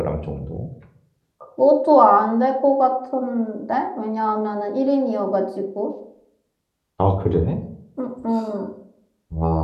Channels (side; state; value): both; identical; correlation 1.00